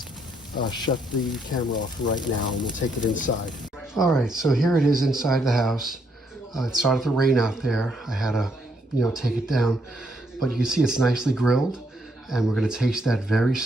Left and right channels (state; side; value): normal; both; correlation 0.74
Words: shut the camera off right now, and we'll take it inside. All right, so here it is inside the house. It started to rain out there. I had to, take it down, but you can see it's nicely grilled, and we're gonna taste that very